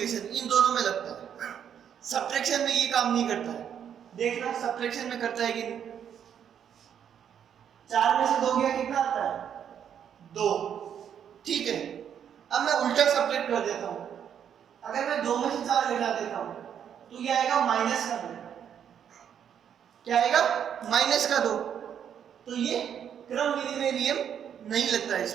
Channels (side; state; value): left; quieter; 8.7 dB